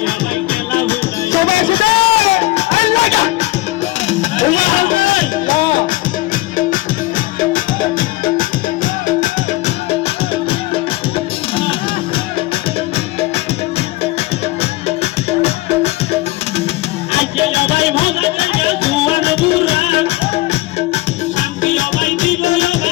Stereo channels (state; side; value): quieter; right; 19.8 dB